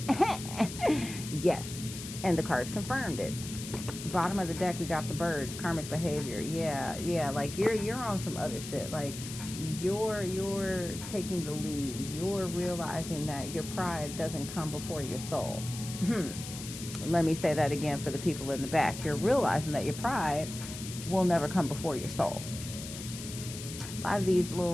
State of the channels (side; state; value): left; noise; hiss, 10 dB below the sound